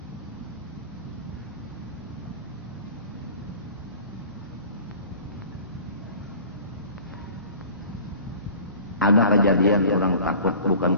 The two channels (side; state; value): both; inverted; correlation -0.44